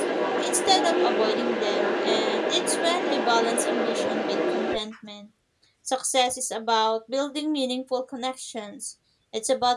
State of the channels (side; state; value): both; identical; correlation 1.00